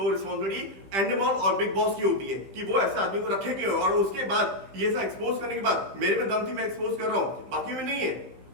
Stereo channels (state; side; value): late; left; 15 ms